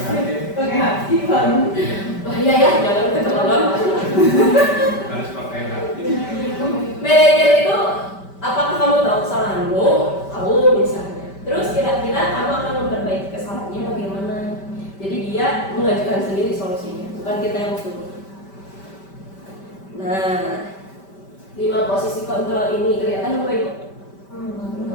Pakai hati Bang. Bahaya ya, jangan keterlaluan. Harus pakai hati. Manajer itu, apakah kamu tahu kesalahanmu? Tahu misalnya. Terus kira-kira kamu akan memperbaiki kesalahannya bagaimana? Jadi dia mengajukan sendiri solusinya, bukan kita yang suruh. Nah, 5 posisi kontrol ini kelihatan Bapak Ibu?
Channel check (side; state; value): right; late; 5.1 ms